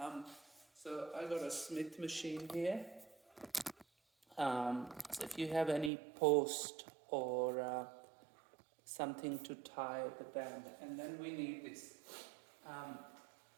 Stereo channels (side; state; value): left; drops out; at 5.9 s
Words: So I got a Smith machine here. So if you have any post or something to tie the band, and then we need this um,